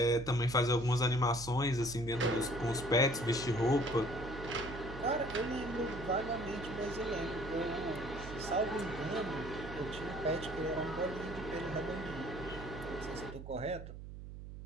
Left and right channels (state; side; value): noise; right; hum, 11 dB below the sound